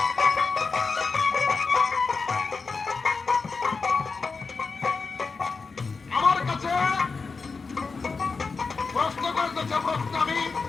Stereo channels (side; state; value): right; quieter; 4.5 dB